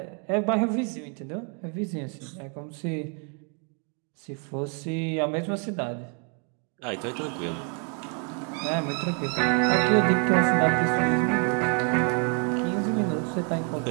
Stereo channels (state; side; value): quieter; left; 39.5 dB